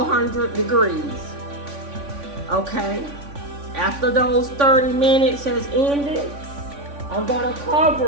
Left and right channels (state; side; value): late; left; 3.5 ms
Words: degrees. Okay? After those 30 minutes has ended, I'm gonna